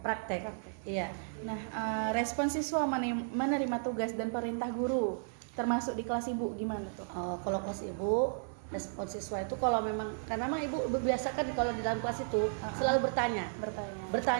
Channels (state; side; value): silent; left; 55 dB below the other